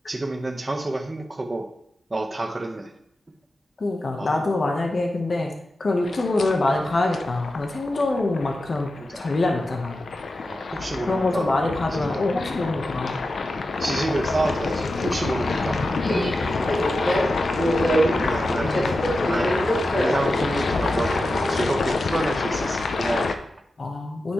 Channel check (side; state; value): both; normal; correlation 0.91